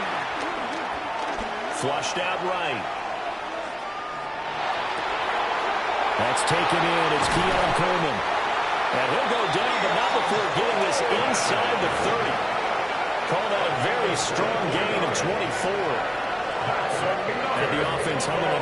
Flushed out right. That's taken in. It's Keon Coleman. And he'll go down, but not before getting this inside the 30. Call that a very strong gain of 24. And the offense humming on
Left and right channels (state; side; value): identical; both; correlation 1.00